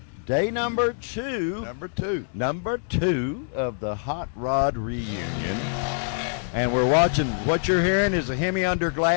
day number two of the Hot Rod Reunion. And we're watching, what you're hearing is a Hemi Under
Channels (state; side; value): silent; right; digital silence